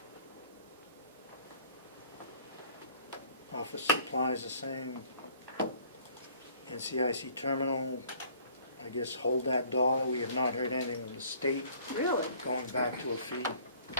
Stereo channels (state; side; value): inverted; both; correlation -0.56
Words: Office supplies the same. NCIC terminal, I guess hold that dollar. We have not heard anything from the state Really? going back to a fee.